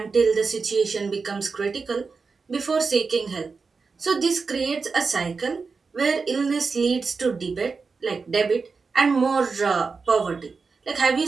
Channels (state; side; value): quieter; left; 4.7 dB